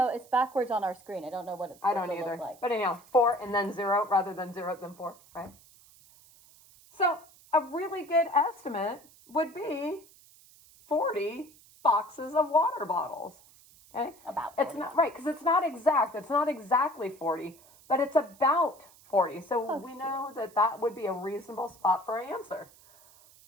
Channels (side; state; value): right; noise; hiss, 25 dB below the sound